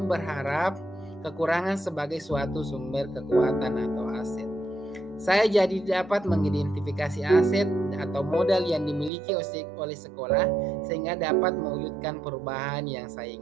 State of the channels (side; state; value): left; drops out; at 9.1 s